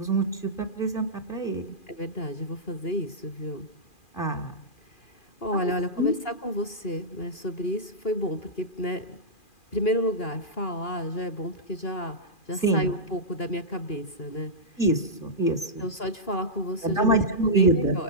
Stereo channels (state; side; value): late; right; 2.4 ms